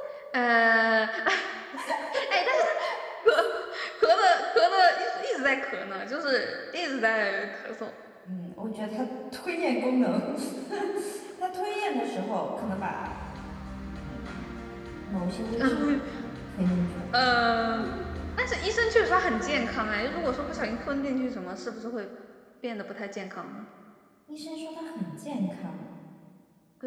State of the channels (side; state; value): both; identical; correlation 1.00